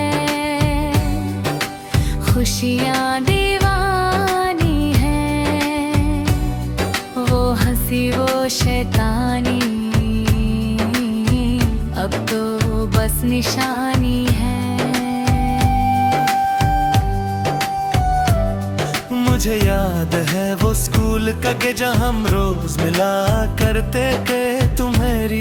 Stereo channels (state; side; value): identical; both; correlation 1.00